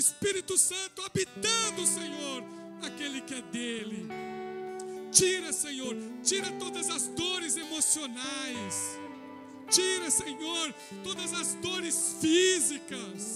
Santo habitando, Senhor, aquele que é dele. Tira, Senhor, tira todas as dores emocionais. Tira, Senhor, todas as dores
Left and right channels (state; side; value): identical; both; correlation 1.00